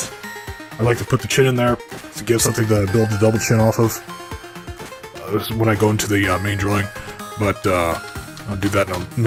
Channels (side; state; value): both; identical; correlation 1.00